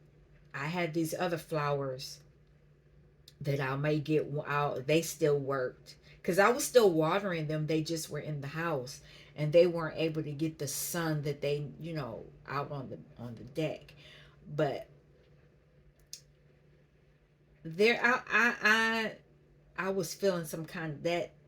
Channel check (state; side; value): identical; both; correlation 1.00